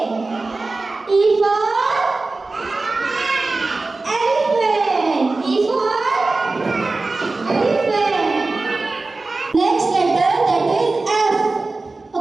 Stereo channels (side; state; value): left; quieter; 3.5 dB